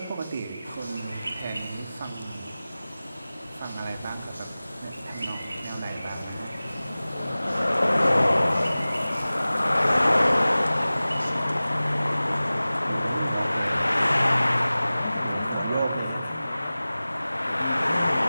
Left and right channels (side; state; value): both; inverted; correlation -0.98